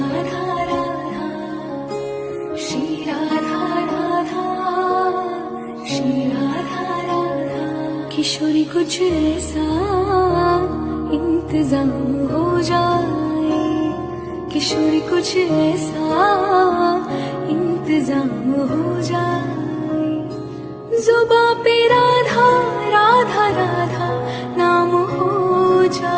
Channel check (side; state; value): both; identical; correlation 1.00